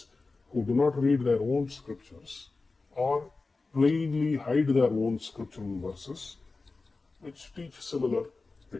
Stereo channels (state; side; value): quieter; right; 3.8 dB